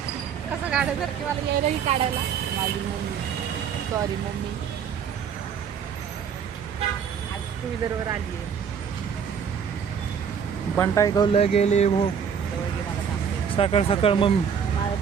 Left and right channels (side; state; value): left; quieter; 7.2 dB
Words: कसं काढायसारखी मला यायलाही काढायला माझी मम्मी सॉरी मम्मी आज टू व्हीलरवर आली आहे बंटाई गवलं गेले भो जवळ घे मला सांगते सकाळ सकाळ मम्मी माझा